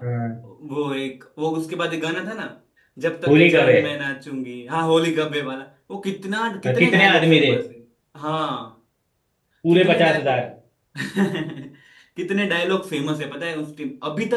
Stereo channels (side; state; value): both; identical; correlation 1.00